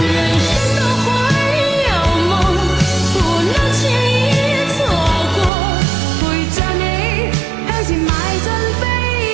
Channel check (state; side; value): drops out; left; at 5.5 s